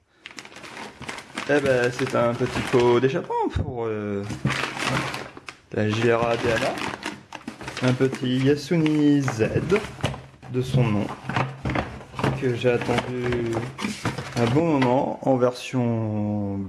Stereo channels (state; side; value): identical; both; correlation 1.00